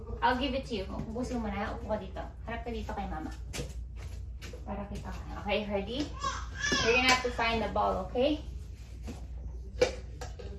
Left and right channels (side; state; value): both; identical; correlation 1.00